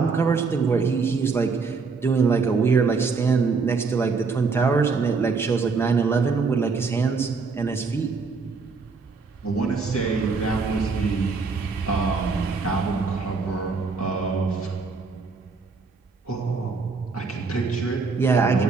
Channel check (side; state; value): left; quieter; 4.7 dB